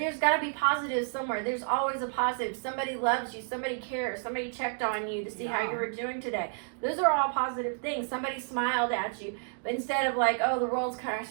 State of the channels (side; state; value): left; silent; digital silence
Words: got to be positives somewhere. There's always a positive. Somebody loves you. Somebody cares. Somebody checked on you to see how you were doing today. Those are all positive things. Somebody smiled at you. But instead of like, oh, the world's